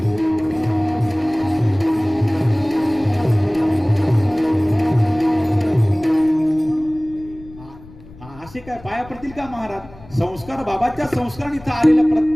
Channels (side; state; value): left; noise; rumble, 20 dB below the sound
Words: असे काय पाया पडतील का महाराज? संस्कार बाबाच्या संस्काराने इथं आलेला